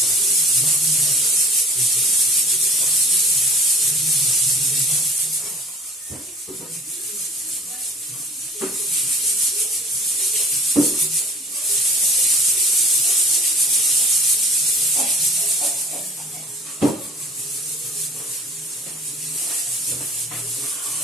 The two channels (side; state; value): both; normal; correlation 0.47